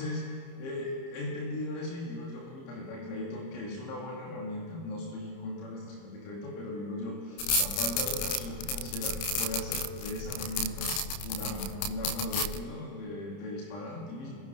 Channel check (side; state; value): right; late; 30 ms